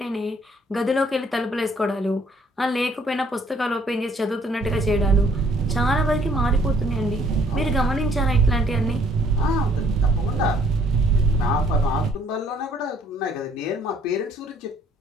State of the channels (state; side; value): normal; both; correlation 0.62